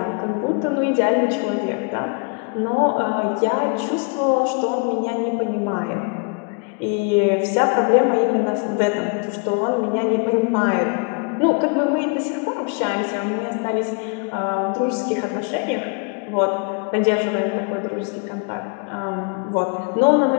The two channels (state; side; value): quieter; right; 36.2 dB